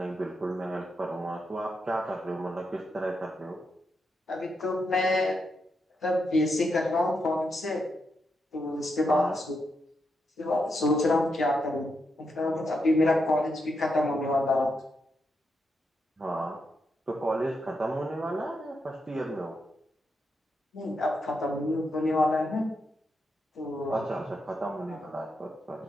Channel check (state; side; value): normal; both; correlation 0.83